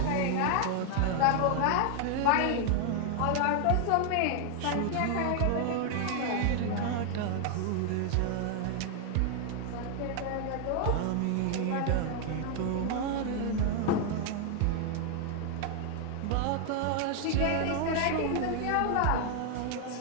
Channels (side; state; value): both; different; correlation 0.00